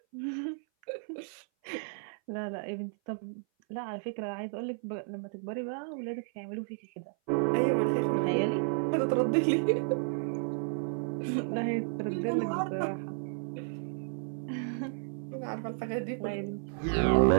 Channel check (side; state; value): left; silent; 56 dB below the other